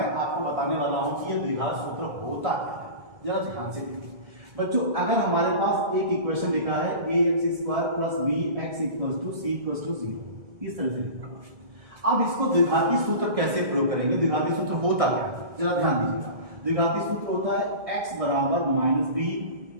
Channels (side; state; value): left; late; 1.6 ms